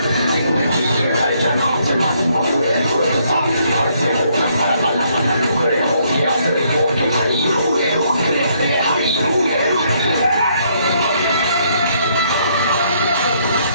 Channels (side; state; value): both; inverted; correlation -0.70